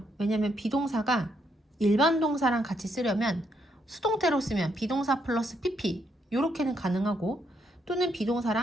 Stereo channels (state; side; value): normal; both; correlation 0.76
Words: 왜냐면 비동사가 일반 동사랑 같이 쓰려면 수동태로 쓰면 비동사 플러스 pp 이렇게는 가능하고 또는